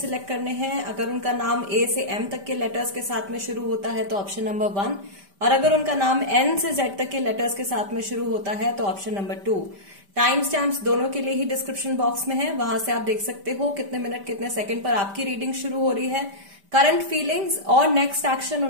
करने हैं। अगर उनका नाम ए से एम तक के लेटर्स के साथ में शुरू होता है तो ऑप्शन नंबर 1, और अगर उनका नाम एन से जेड तक के लेटर्स के साथ में शुरू होता है तो ऑप्शन नंबर 2। टाइम स्टैम्प्स दोनों के लिए ही डिस्क्रिप्शन बॉक्स में है, वहां से आप देख सकते हो कितने मिनट कितने सेकंड पर आपकी रीडिंग शुरू हो रही है, करंट फीलिंग्स और नेक्स्ट एक्शन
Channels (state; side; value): late; left; 5.1 ms